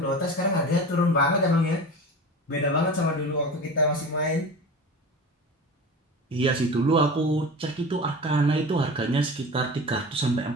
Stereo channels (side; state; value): both; normal; correlation 0.33